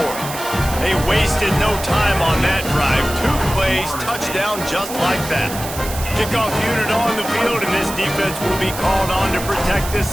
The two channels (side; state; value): right; noise; hiss, 10 dB below the sound